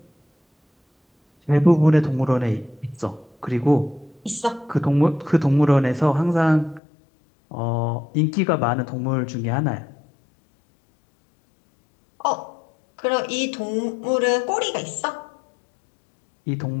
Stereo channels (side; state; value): right; drops out; at 6.8 s